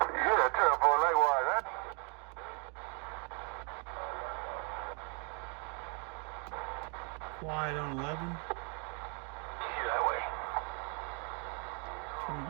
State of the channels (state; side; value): quieter; left; 36.6 dB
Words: terrible likewise. Quiet on 11. Yeah, that way.